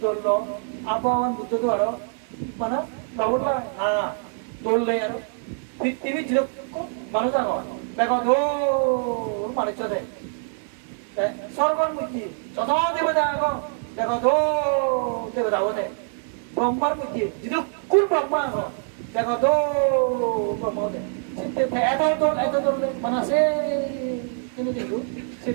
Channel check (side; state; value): left; silent; digital silence